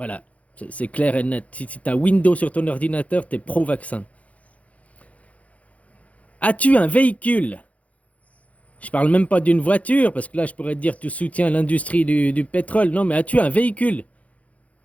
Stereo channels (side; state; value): right; late; 0.067 ms